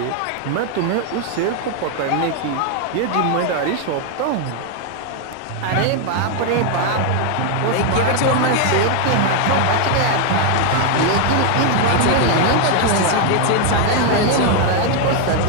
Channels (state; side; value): different; both; correlation 0.01